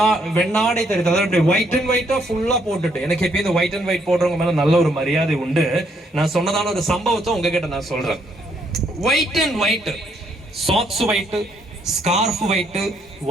வெண்ணாடை தெரியுது, அதாவது ஒயிட் அண்ட் ஒயிட்டா ஃபுல்லா போட்டுட்டு, எனக்கு எப்பயும் இந்த ஒயிட் அண்ட் ஒயிட் போடுறவங்க மேல நல்ல ஒரு மரியாதை உண்டு. நான் சொன்னதான ஒரு சம்பவத்தை உங்ககிட்ட நான் சொல்றேன். White and white, socks white, scarf white,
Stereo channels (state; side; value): normal; both; correlation 0.71